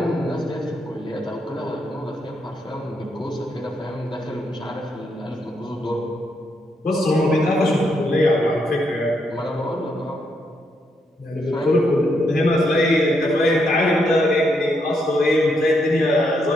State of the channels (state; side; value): normal; both; correlation 0.78